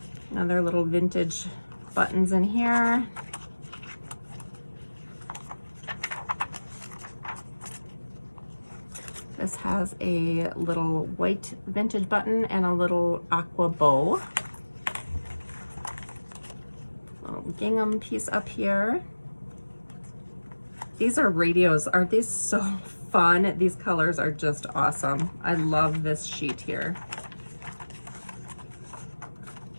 Another little vintage buttons in here. This has a little white vintage button and a little aqua bow. Little gingham piece up here. These are radios. Aren't these so fun? These colors are just awesome. I love this sheet here.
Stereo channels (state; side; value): inverted; both; correlation -1.00